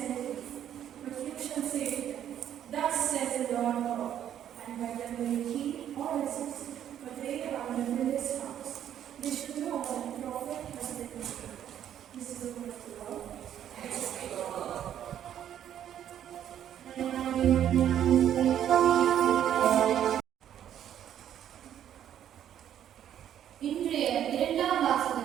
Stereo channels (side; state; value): left; quieter; 10.4 dB